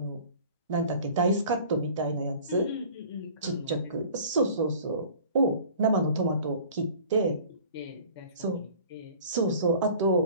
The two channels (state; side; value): inverted; both; correlation -0.46